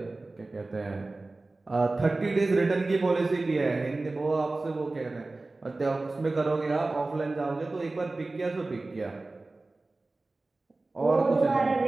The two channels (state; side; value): quieter; left; 3.2 dB